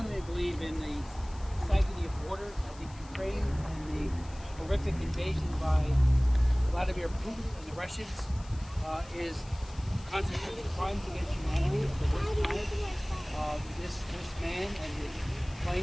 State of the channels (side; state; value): left; noise; hiss, 22 dB below the sound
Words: believe in the sanctity of water. I think Ukraine and the horrific invasion by Vladimir Putin and the Russians is constituting crimes against humanity of the worst kind. This man and his